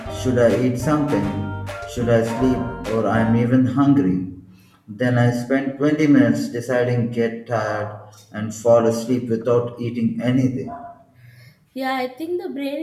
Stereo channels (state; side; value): identical; both; correlation 1.00